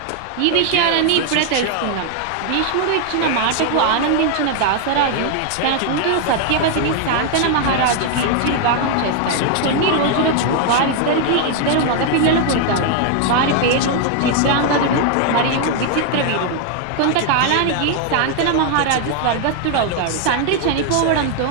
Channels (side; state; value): both; different; correlation 0.00